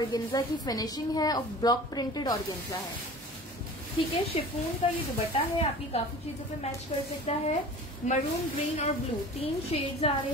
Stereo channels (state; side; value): normal; both; correlation 0.40